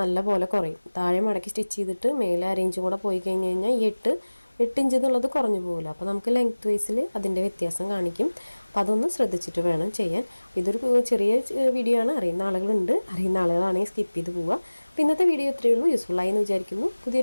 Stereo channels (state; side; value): inverted; both; correlation -1.00